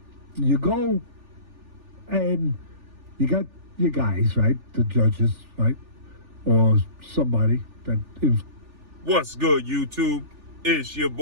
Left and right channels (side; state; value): left; late; 3.4 ms